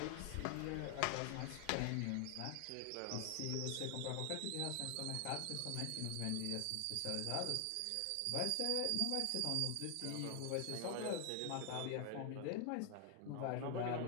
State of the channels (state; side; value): different; both; correlation 0.00